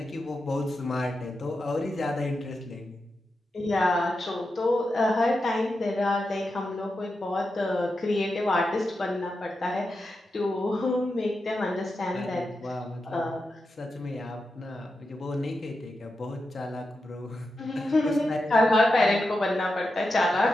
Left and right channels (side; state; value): both; normal; correlation 0.89